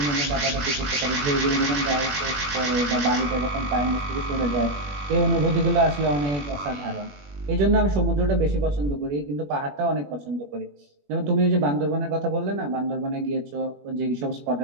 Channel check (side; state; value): left; late; 21 ms